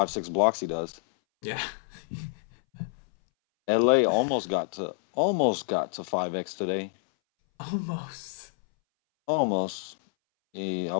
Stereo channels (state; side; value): silent; right; 59 dB below the other